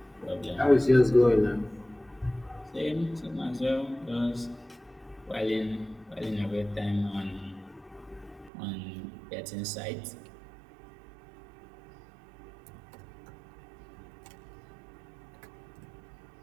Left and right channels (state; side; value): drops out; left; at 8.5 s